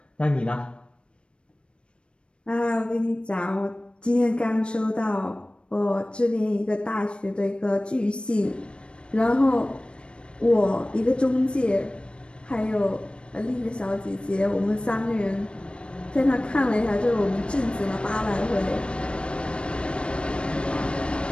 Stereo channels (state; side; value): late; right; 0.057 ms